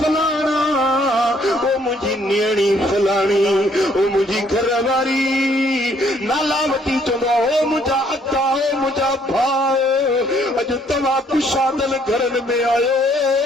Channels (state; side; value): normal; both; correlation 0.65